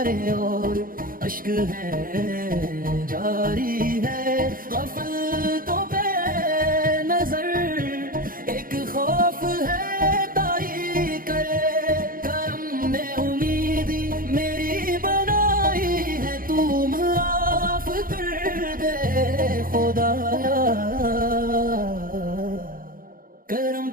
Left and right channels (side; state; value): left; late; 0.41 ms